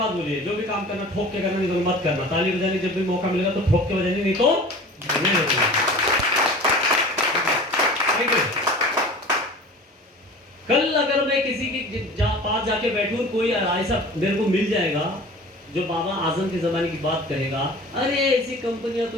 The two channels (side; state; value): both; normal; correlation 0.40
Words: बोली है, जो भी काम करना ठोक के करना, नहीं तो मत करना। ताली बजाने जब भी मौका मिलेगा तो ठोक के बजाने, नहीं तो नहीं होगा। कल अगर मैं किसी के पास जाके बैठूं, कोई ऐसा मेरे को मिल जाएगा जो बाबा आजम के जमाने की बात कहेगा, अरे ऐसी कंपनियां तो